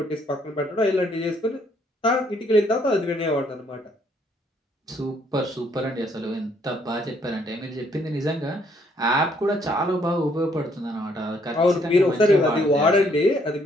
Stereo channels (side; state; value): both; normal; correlation 0.68